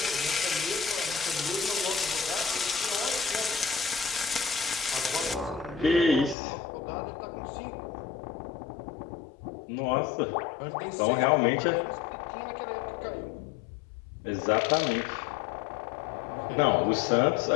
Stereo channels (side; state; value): right; drops out; at 6.4 s